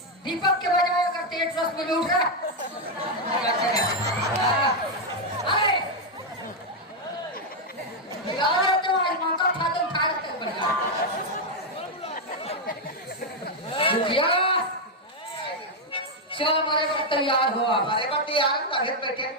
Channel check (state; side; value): normal; both; correlation 0.01